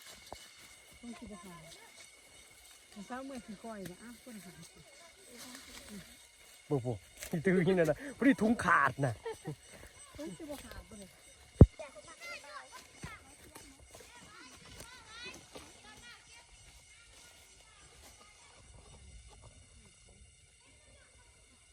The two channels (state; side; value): identical; both; correlation 1.00